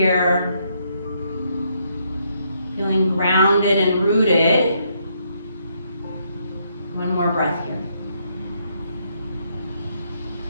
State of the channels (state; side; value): inverted; both; correlation -0.74